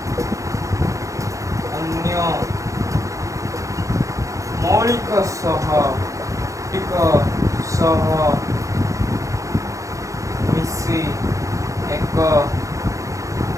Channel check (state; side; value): late; left; 0.15 ms